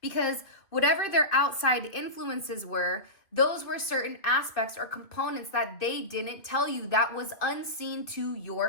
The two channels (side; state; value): right; late; 2.5 ms